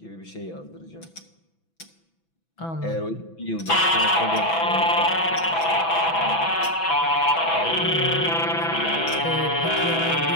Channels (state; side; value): late; right; 6.0 ms